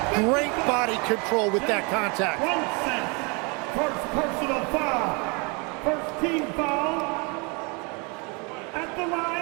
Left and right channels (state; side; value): quieter; left; 31.4 dB